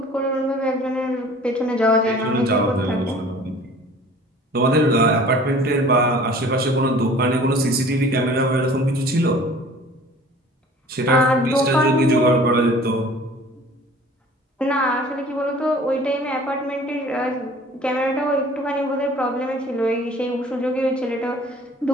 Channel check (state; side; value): normal; both; correlation 0.48